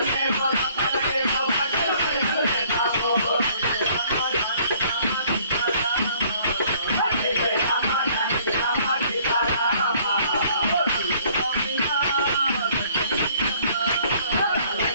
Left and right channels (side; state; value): both; inverted; correlation -0.59